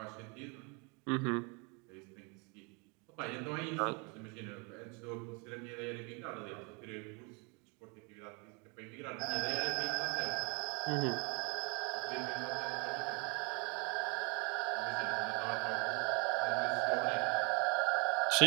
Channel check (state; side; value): quieter; left; 32.2 dB